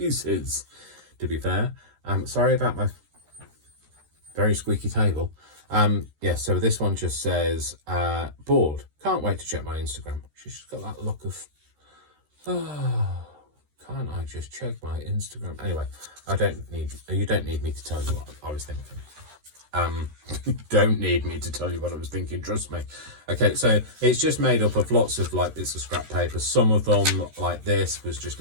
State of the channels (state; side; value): late; left; 13 ms